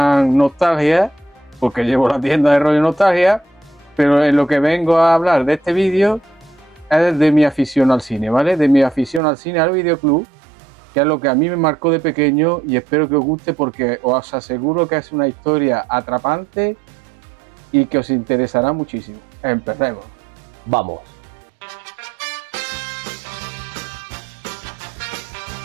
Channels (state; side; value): drops out; left; at 9.2 s